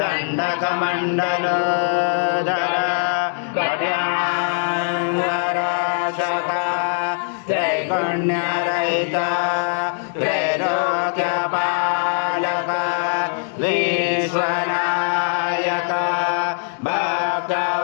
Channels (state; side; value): silent; right; digital silence